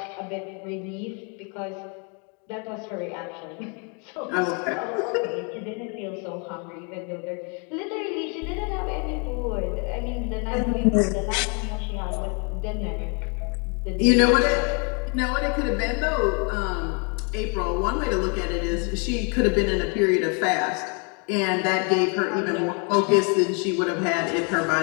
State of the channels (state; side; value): quieter; right; 36.2 dB